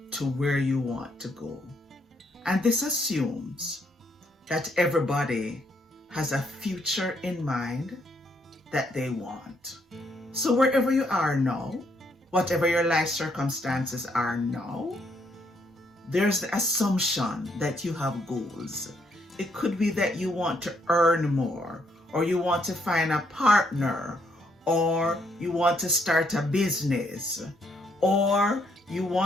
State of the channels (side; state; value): both; normal; correlation 0.72